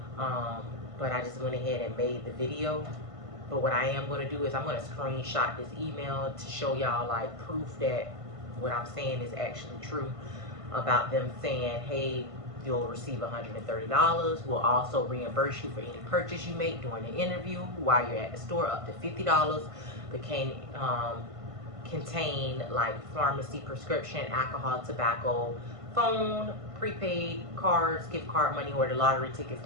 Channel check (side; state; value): left; late; 1.5 ms